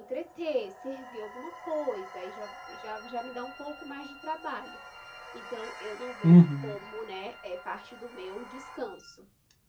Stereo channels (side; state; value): both; identical; correlation 1.00